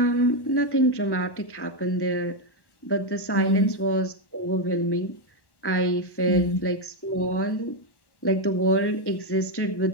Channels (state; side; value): late; right; 1.1 ms